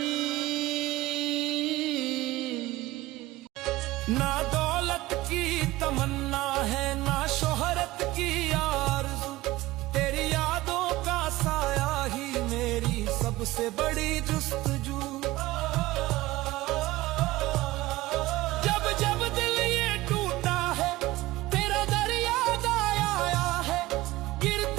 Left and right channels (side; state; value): left; quieter; 18.2 dB